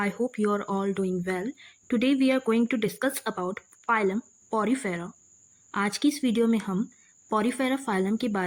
hope you are all doing well. Today we are going to discuss about phylum Porifera. आज की इस video में हम Porifera phylum के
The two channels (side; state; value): both; identical; correlation 1.00